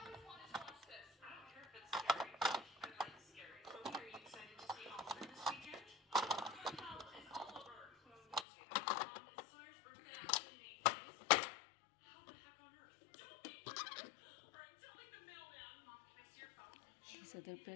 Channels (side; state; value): right; drops out; at 8.5 s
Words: These are the